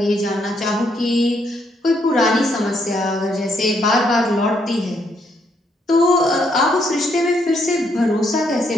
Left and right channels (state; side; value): normal; both; correlation 0.73